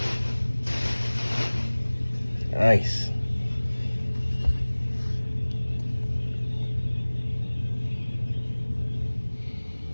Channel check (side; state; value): both; inverted; correlation -1.00